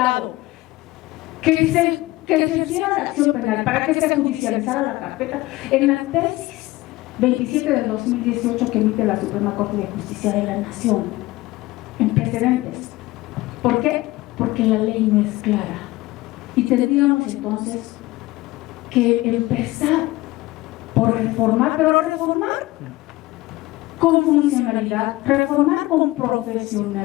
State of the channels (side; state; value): right; quieter; 19.2 dB